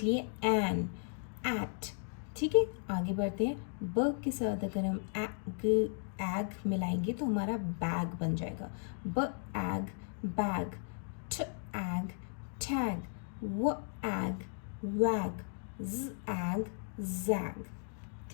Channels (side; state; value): right; silent; 54 dB below the other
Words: है एन, एट। ठीक है, आगे बढ़ते हैं। ब के साथ अगर हम एग मिलाएंगे तो हमारा बैग बन जाएगा। ब एग बैग, ठ एग टैग, व एग वैग, z एग जैग।